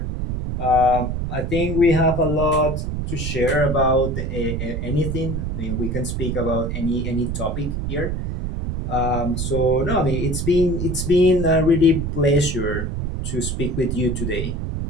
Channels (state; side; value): noise; right; rumble, 3 dB below the sound